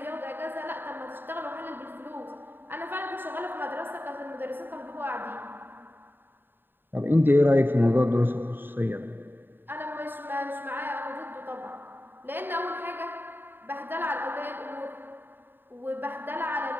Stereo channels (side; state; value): left; late; 0.095 ms